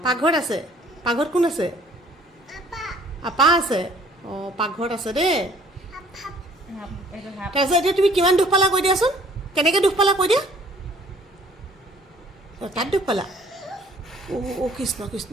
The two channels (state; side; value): normal; both; correlation 0.57